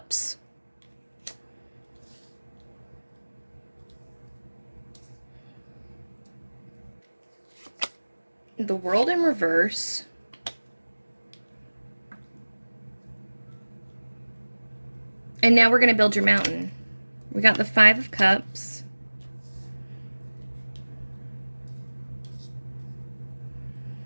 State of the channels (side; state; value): both; inverted; correlation -1.00